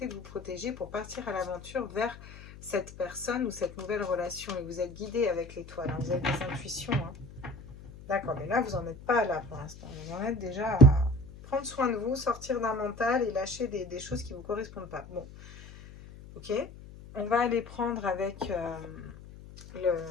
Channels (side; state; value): left; noise; hum, 16 dB below the sound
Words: de vous protéger pour partir à l'aventure vers cette personne ou cette nouvelle relation. Et vous êtes guidé avec l'étoile, hein. Vous avez des intuitions. Hein. D'accord, mais là, vous n'en êtes pas là pour l'instant. Vous en êtes déjà à prendre soin de vous, sortir d'un mental et lâcher des choses qui ne vous correspondent pas. Bon, ok. On va aller prendre avec